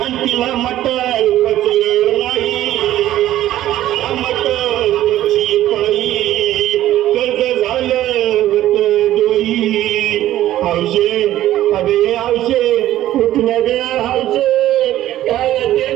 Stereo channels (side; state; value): left; quieter; 13.6 dB